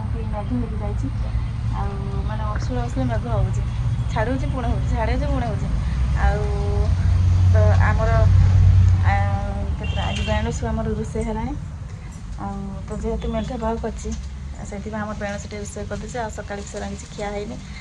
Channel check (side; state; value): both; identical; correlation 1.00